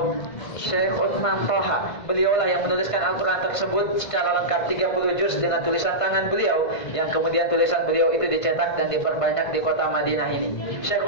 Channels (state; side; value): late; right; 1.5 ms